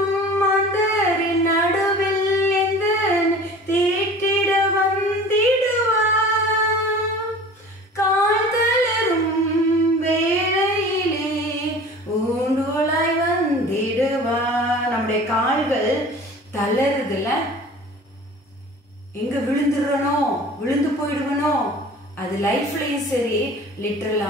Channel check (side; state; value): both; normal; correlation 0.42